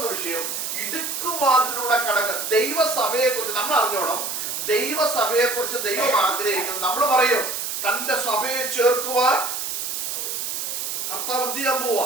വിഷയം ഇടുക്കുവാതിലൂടെ കടക്കുക. ദൈവസഭയെ കുറിച്ച് നമ്മൾ അറിഞ്ഞോണം. ദൈവസഭയെ കുറിച്ച് ദൈവം ആഗ്രഹിക്കുന്നത്, നമ്മൾ പറയും തന്റെ സഭയെ ചേർക്കുവാൻ കർത്താവ് എന്ത് ചെയ്യാൻ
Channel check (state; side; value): noise; right; hiss, 3 dB below the sound